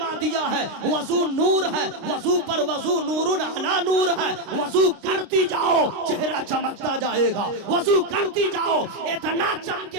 دیا ہے وضو نور ہے، وضو پر وضو نور علی نور ہے، وضو کرتی جاؤ چہرہ چمکتا جائے گا، وضو کرتی جاؤ اتنا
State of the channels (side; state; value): left; late; 29 ms